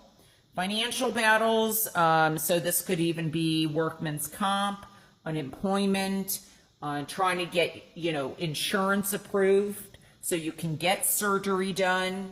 Financial battles, so this could even be workman's comp, unemployment, trying to get, you know, insurance approved so you can get surgery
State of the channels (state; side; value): identical; both; correlation 1.00